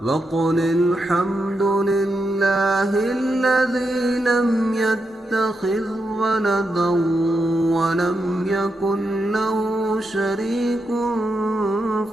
وقل الحمد لله الذي لم يتخذ ولدا ولم يكن له شريك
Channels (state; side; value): normal; both; correlation 0.85